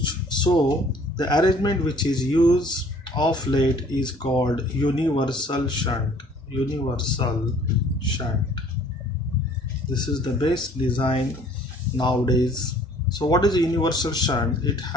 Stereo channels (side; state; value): both; normal; correlation 0.55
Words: So the arrangement which is used of late is called universal shunt. Universal shunt. This is the best design nowadays. So what is a universal shunt? It